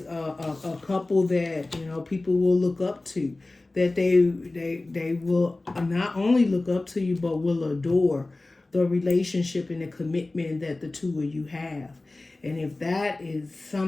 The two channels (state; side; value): quieter; right; 3.0 dB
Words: a couple that, you know, people will look up to, that they will not only look up to you, but will adore the relationship and the commitment that the two of you have. And if that is